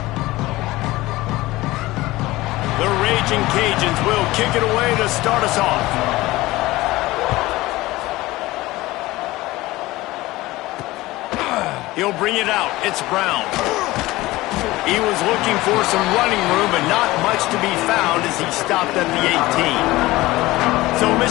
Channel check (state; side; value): quieter; right; 18.9 dB